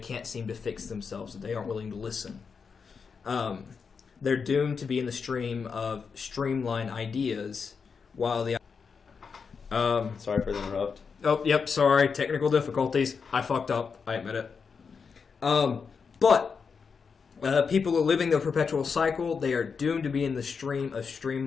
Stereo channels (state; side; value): quieter; right; 5.7 dB